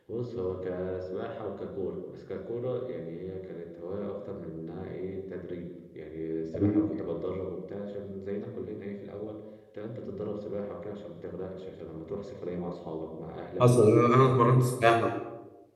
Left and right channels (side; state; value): both; identical; correlation 1.00